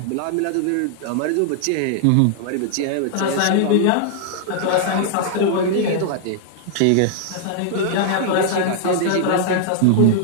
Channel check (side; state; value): both; different; correlation -0.01